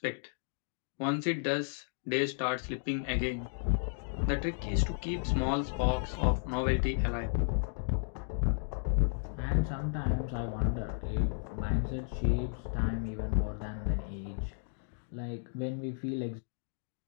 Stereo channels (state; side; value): silent; right; digital silence